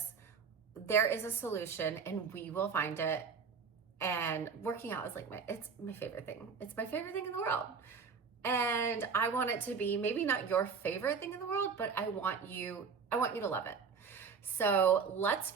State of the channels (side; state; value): left; quieter; 5.8 dB